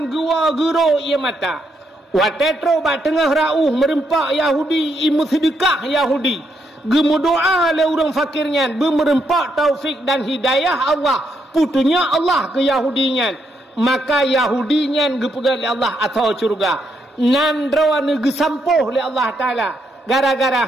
gua gero ia mata. Watetro ba tengah rauh merempak Yahudi imu sedekah Yahudi. Gemu doa le orang fakirnya bermerempak taufik dan hidayah Allah. Putunya Allah ke Yahudinya. Maka Yahudinya gepegal le Allah atau surga. Nan rawan gesampuh le Allah Taala. Gara-gara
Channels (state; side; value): normal; both; correlation 0.77